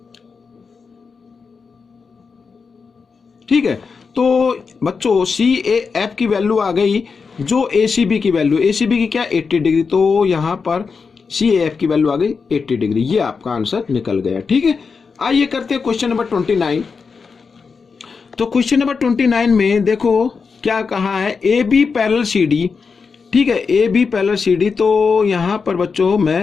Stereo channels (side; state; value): right; quieter; 5.2 dB